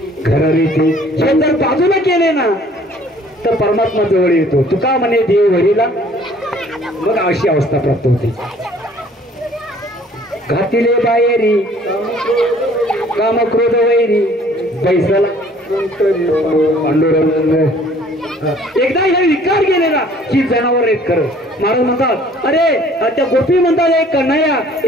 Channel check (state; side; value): normal; both; correlation 0.56